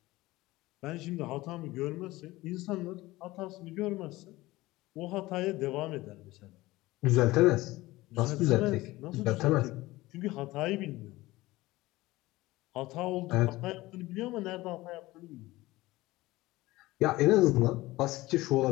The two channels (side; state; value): right; quieter; 19.0 dB